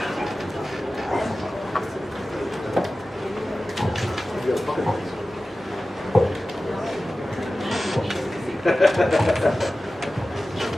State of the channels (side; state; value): both; normal; correlation 0.95